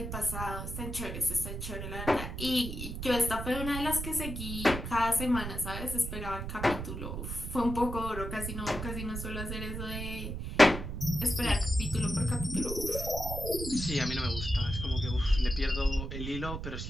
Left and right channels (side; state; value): right; noise; rumble, 6 dB below the sound